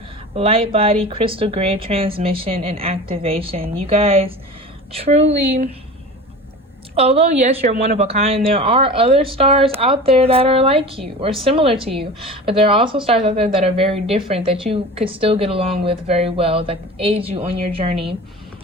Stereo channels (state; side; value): normal; both; correlation 0.35